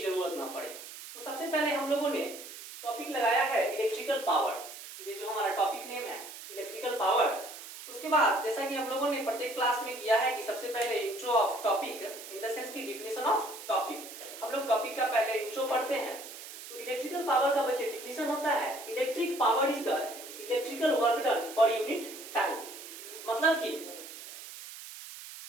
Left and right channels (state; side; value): noise; right; hiss, 13 dB below the sound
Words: ना पड़े। तो सबसे पहले हम लोगों ने टॉपिक लगाया है इलेक्ट्रिकल पावर, ये जो हमारा टॉपिक नेम है इलेक्ट्रिकल पावर। उसके बाद जैसा कि हम लोगों ने प्रत्येक क्लास में किया है कि सबसे पहले intro of topic in the sense की डिफिनेशन ऑफ टॉपिक, हम लोग टॉपिक का पहले इंट्रो पढ़ते हैं। तो इलेक्ट्रिकल पावर का बच्चे डिफिनेशन होता है electric power is the electrical work done per unit time, मतलब कि